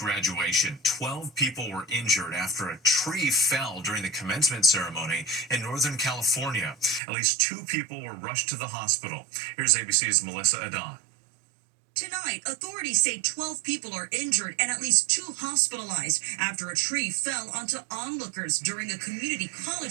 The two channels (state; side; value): drops out; left; at 7.0 s